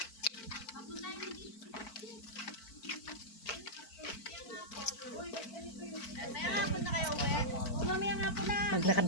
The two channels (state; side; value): late; right; 4.5 ms